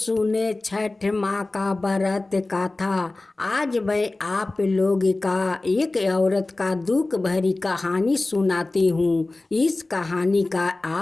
छठ माँ का व्रत कथा। आज मैं आप लोग का एक औरत का दुख भरी कहानी सुनाती हूँ। इस कहानी का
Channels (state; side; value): quieter; right; 3.0 dB